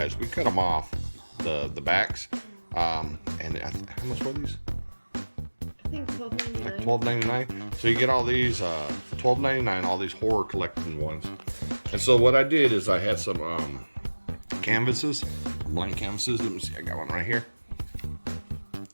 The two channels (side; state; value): both; inverted; correlation -1.00